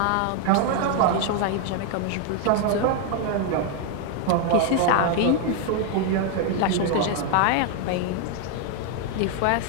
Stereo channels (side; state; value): both; different; correlation 0.00